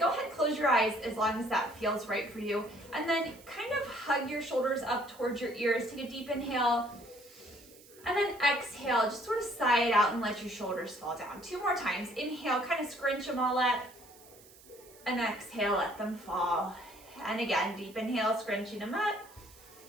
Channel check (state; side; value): noise; right; hiss, 23 dB below the sound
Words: ahead, close your eyes as long as that feels right for you. And then kind of hug your shoulders up towards your ears. Take a deep inhale. And then exhale, just sort of sigh it out and let your shoulders fall down. 2 more times. Inhale, kind of scrunch them all up. And exhale, let them fall. And again, deep inhale, scrunching them up.